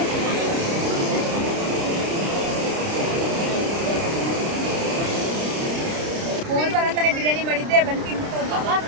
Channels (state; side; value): late; left; 30 ms